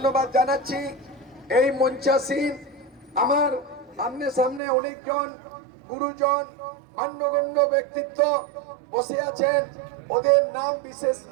জানাচ্ছি। এই মঞ্চাসীন আমার সামনে সামনে অনেকজন গুরুজন মান্যগণ্য ব্যক্তিত্ব বসে আছেন, ওদের নাম বিশেষ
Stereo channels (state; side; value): drops out; left; at 4.6 s